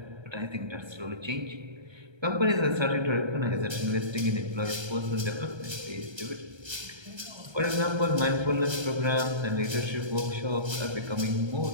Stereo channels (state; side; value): late; left; 1.3 ms